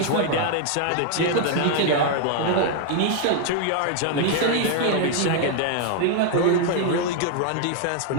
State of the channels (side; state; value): both; different; correlation 0.00